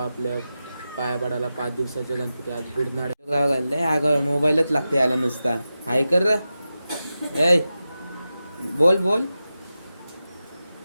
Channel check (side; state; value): both; inverted; correlation -0.93